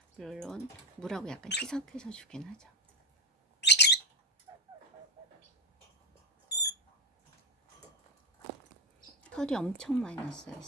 물론 물하고 약간 희석해서 주긴 하죠. 털이 엄청 많이 났어요,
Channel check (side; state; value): both; normal; correlation 0.12